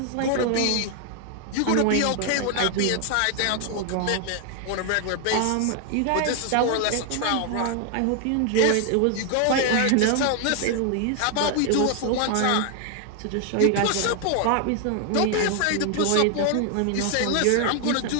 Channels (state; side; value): different; both; correlation 0.00